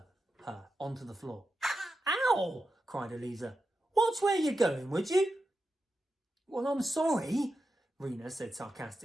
her onto the floor. Ow! Cried Aleeza. Watch where you're going, would you? Well, I'm sorry, Rina said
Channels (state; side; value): normal; both; correlation 0.89